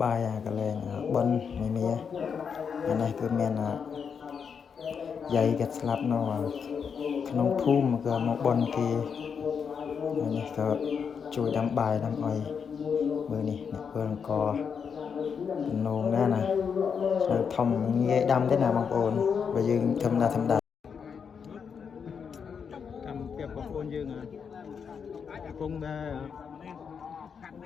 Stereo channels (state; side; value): quieter; right; 6.6 dB